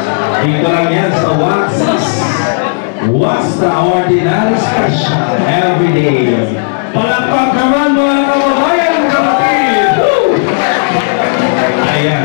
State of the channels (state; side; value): silent; right; digital silence